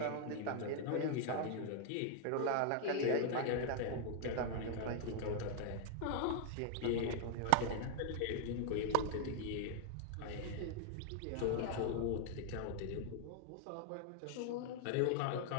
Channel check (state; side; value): different; both; correlation 0.00